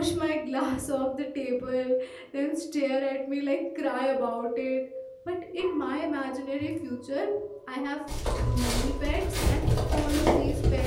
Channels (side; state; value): both; identical; correlation 1.00